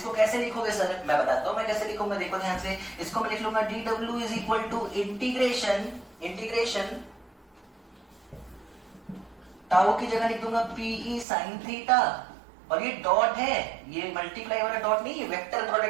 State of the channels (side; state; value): left; drops out; at 11.2 s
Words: कैसे लिखोगे सर, मैं बताता हूं मैं कैसे लिखूंगा, देखो ध्यान से, इसको मैं लिख लूंगा d W is equal to integration, integration tau की जगह लिख दूंगा पीई साइन थीटा, और ये डॉट है, ये मल्टीप्लाई वाला डॉट नहीं, ये वेक्टर